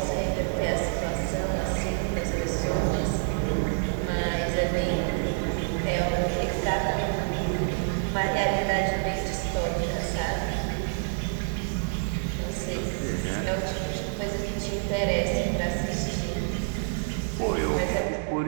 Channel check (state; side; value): silent; left; 60 dB below the other